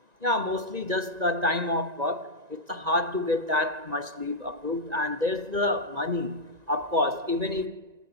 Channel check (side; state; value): left; late; 1.9 ms